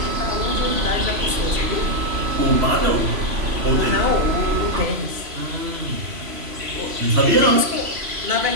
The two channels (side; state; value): left; late; 3.0 ms